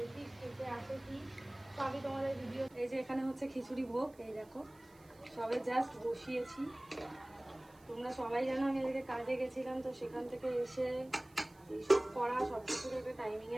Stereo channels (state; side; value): noise; right; hiss, 28 dB below the sound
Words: খেতে আসে কি, তো আমি তোমাদের ভিডিও। এই যে এখানে হচ্ছে খিচুড়ি ভোগ, এই দেখো সবে জাস্ট বসিয়েছি। তোমরা সবাই জানো আমি এদিকে কাজে গেছিলাম, তো সেখান থেকে এসে এইসব করা সব কিছুর একটা